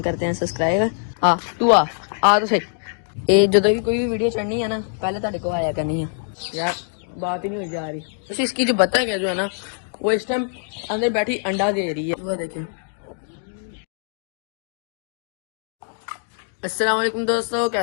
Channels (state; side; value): silent; right; digital silence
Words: करते हैं सब्सक्राइब। तू आ तो सही। ये जो भी कोई भी वीडियो चढ़नी है ना, पहले तेरे को आया करनी है यार, बात ही नहीं हो जा रही। तो इसकी जो बतख है जो है ना, वो इस टाइम अंदर बैठी अंडा दे रही है। वो देखिए। अस्सलाम वालेकुम दोस्तों,